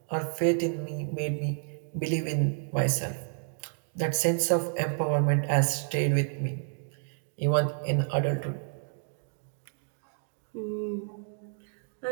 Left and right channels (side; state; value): left; silent; digital silence